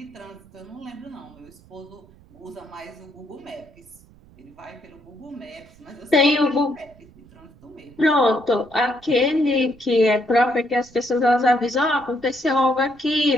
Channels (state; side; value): noise; right; rumble, 26 dB below the sound